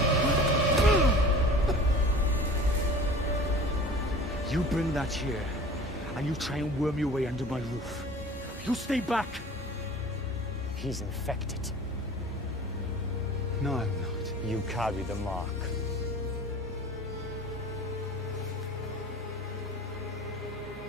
You bring that here, and you try and worm your way under my roof. You stay back! He's infected. No, I'm not. You carry the mark.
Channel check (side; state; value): both; normal; correlation 0.41